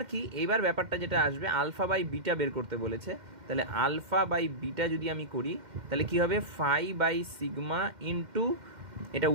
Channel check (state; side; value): late; left; 2.1 ms